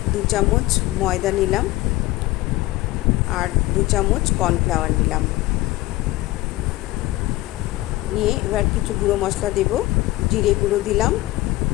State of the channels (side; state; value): right; quieter; 18.4 dB